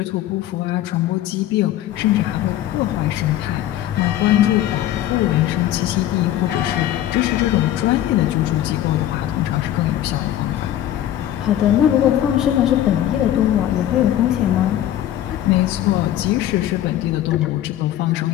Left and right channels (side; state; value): right; quieter; 12.5 dB